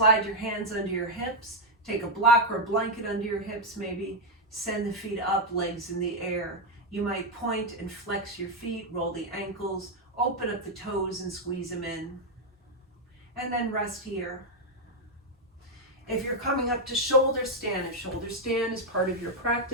your hands under your hips, take a block or a blanket under your hips, maybe send the feet up, legs in the air. You might point and flex your feet, roll the ankles, open up the toes and squeeze them in. And then rest here. If you're coming up to shoulder stand, if shoulder stand is part of your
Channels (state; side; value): normal; both; correlation 0.01